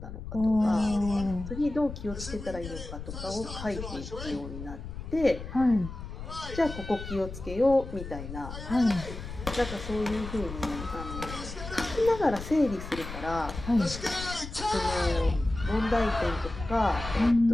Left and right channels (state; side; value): noise; left; rumble, 10 dB below the sound